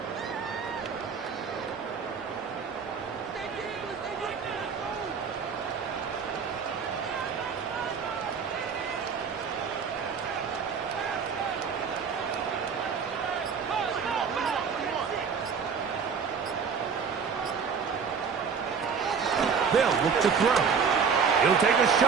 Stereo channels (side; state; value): left; quieter; 6.1 dB